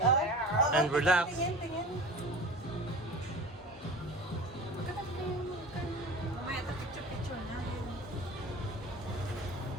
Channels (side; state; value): both; normal; correlation 0.37